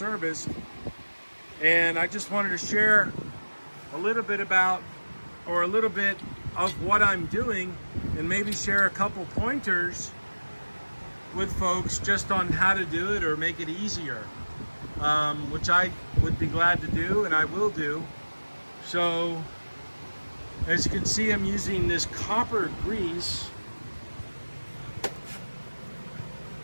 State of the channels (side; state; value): both; inverted; correlation -1.00